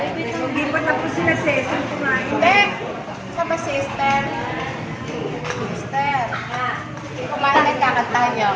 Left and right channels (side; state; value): both; identical; correlation 1.00